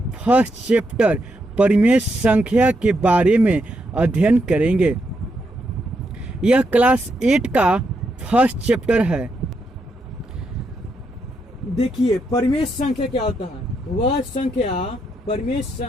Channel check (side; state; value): both; normal; correlation 0.80